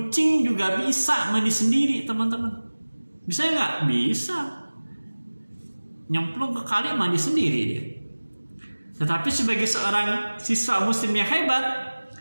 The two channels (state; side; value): inverted; both; correlation -1.00